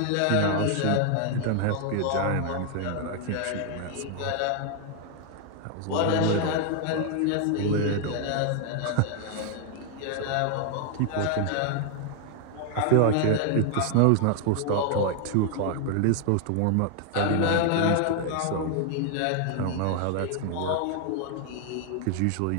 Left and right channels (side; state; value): both; different; correlation 0.00